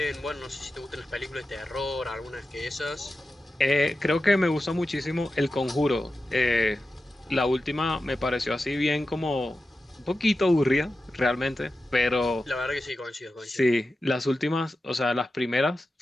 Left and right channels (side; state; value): both; normal; correlation 0.92